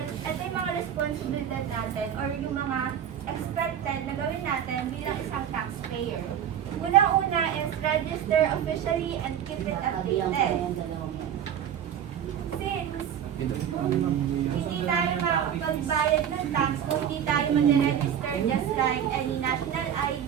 ito yung mga responsibilidad natin or yung mga expected na gawin natin bilang isang taxpayer. Una-una is register officially and keep it updated. Since hindi tayo makapagbayad ng tax kung hindi tayo mag-register just like any national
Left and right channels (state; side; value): quieter; left; 9.3 dB